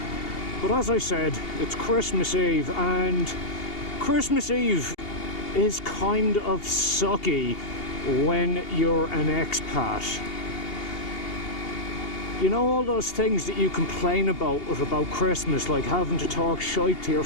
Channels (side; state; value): right; late; 2.8 ms